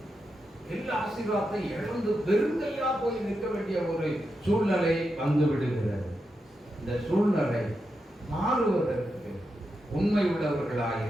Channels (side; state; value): both; normal; correlation 0.87